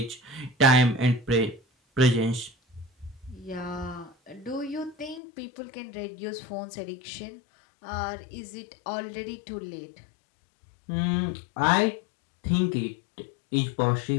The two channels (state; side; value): drops out; right; at 5.2 s